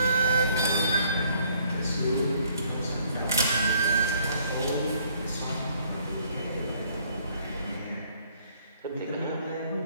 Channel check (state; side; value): inverted; both; correlation -0.63